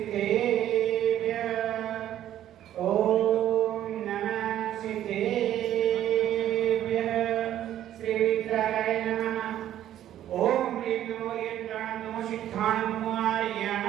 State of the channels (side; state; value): left; quieter; 11.9 dB